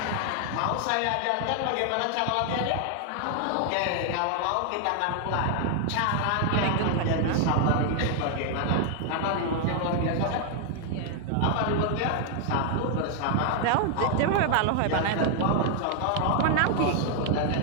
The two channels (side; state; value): both; different; correlation 0.00